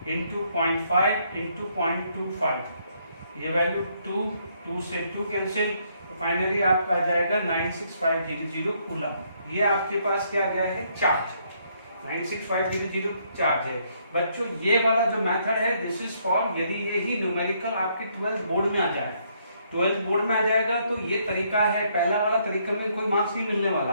into 0.5 into 0.25, ये वैल्यू 2 से 2 कैंसिल, तो फाइनली आपका आ जाएगा 96500 कूलम। ये आपके पास क्या गया है चार्ज, 96500 चार्ज है। बच्चों ये वाला जो मेथड है दिस इज फॉर यदि यही न्यूमेरिकल आपके 12th बोर्ड में आ जाए, 12th बोर्ड में आ जाएगा तो ये तरीका है। पहला वाला तरीका में कोई मार्क्स नहीं मिलने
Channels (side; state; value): both; inverted; correlation -0.71